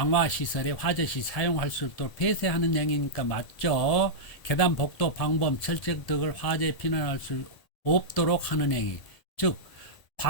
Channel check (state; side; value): late; right; 1.7 ms